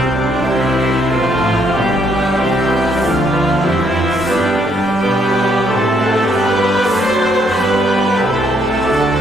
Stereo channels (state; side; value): normal; both; correlation 0.71